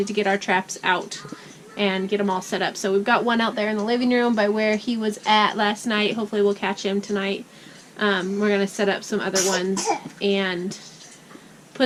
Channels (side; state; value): both; identical; correlation 1.00